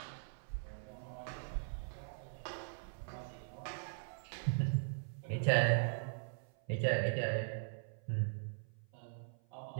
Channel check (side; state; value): left; silent; 51 dB below the other